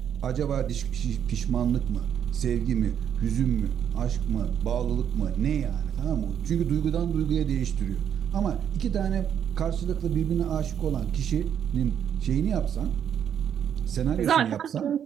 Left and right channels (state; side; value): quieter; left; 8.9 dB